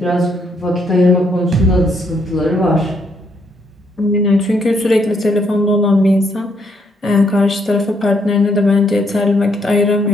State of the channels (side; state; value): both; normal; correlation 0.73